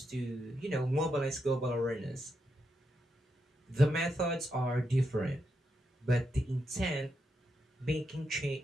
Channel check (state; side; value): normal; both; correlation 0.83